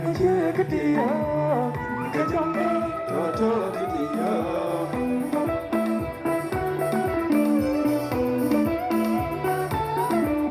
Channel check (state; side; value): identical; both; correlation 1.00